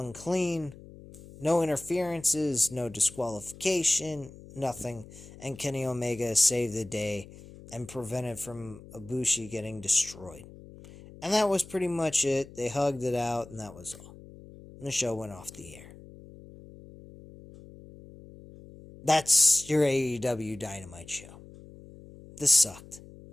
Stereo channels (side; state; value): left; noise; hum, 18 dB below the sound